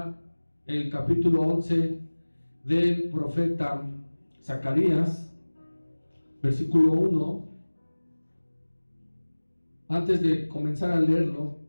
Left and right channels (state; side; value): inverted; both; correlation -1.00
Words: el capítulo 11 del profeta Zacarías, versículo 1. Antes de comenzar a leerlo,